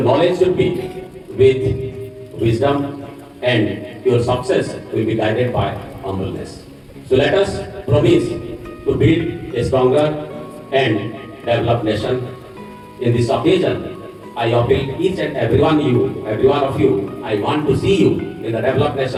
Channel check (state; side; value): identical; both; correlation 1.00